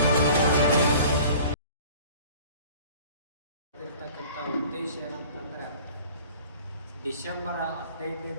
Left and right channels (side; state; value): both; inverted; correlation -0.47